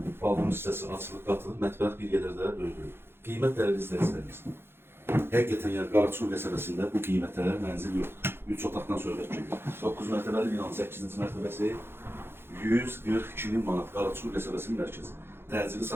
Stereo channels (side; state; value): left; late; 0.11 ms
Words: balkon hissəsi açılıb qatılıb, mətbəx bir qədər də böyüdür. Qiymət dəyərli izləyicilərimiz. Həqiqətən yəni Qaraçuxur qəsəbəsində bu qiymətə mənzil yoxdur. 3 otaqdan söhbət gedir. 9 mərtəbəli binanın 8-ci mərtəbəsi 142.000 manat Qaraçuxur qəsəbəsinin mərkəzi. Təcili